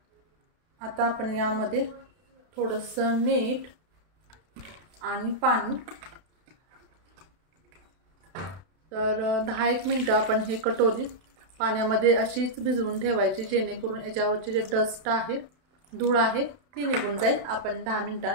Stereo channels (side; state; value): left; late; 32 ms